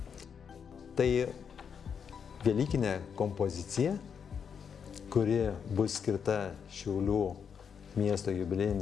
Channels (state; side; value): quieter; right; 7.0 dB